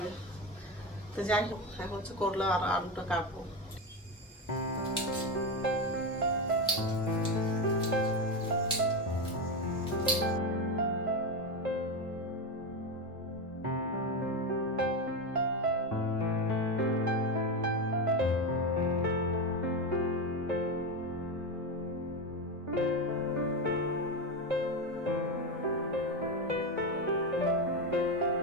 তো যাই হোক, এখন করলা আর আলুটা কাটবো।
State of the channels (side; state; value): both; normal; correlation 0.14